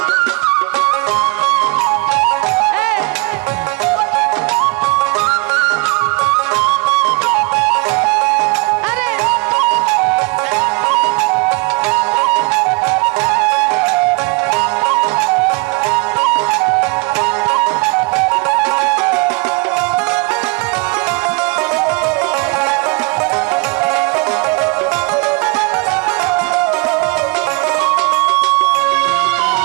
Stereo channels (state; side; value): quieter; left; 28.8 dB